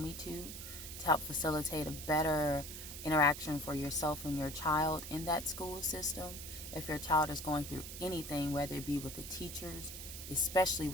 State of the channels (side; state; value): right; noise; hiss, 9 dB below the sound